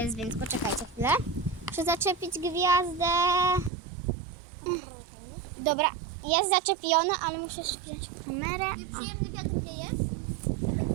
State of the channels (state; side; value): drops out; left; at 3.7 s